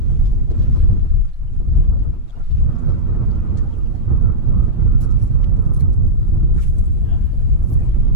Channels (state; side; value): late; left; 8.8 ms